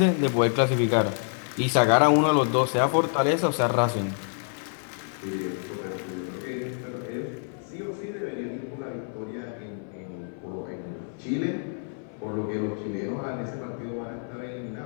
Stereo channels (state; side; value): silent; right; 60 dB below the other